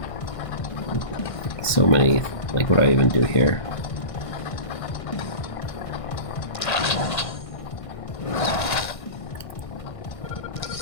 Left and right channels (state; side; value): late; right; 1.6 ms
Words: so many. Like, what do I even do here?